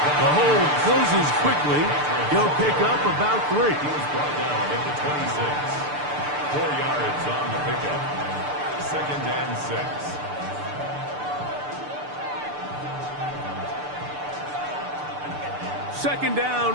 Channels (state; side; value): late; left; 6.8 ms